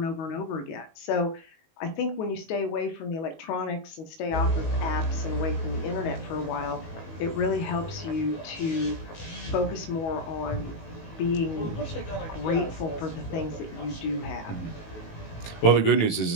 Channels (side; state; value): right; late; 19 ms